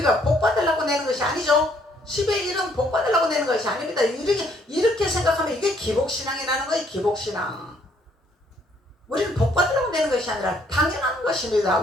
복 받으려고 내는 것이 아니죠. 10의 1은 복 받으려고 내는 것이 아닙니다. 이렇게 생각하면 이게 기복신앙이라는 거예요. 기복신앙. 우리는 복 받으려고 내는 것이 아니라 당연한 것입니다.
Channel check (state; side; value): normal; both; correlation 0.66